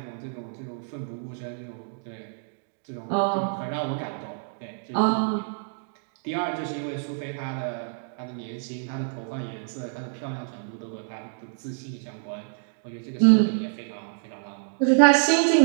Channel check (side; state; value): left; silent; digital silence